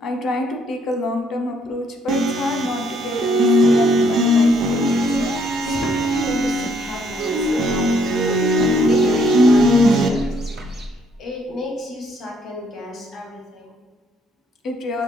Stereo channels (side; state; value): both; normal; correlation 0.68